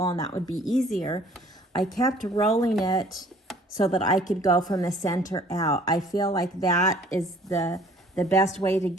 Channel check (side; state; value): both; normal; correlation 0.55